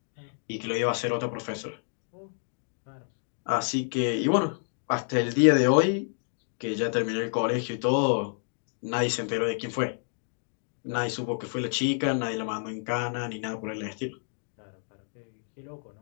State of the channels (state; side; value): silent; right; 58 dB below the other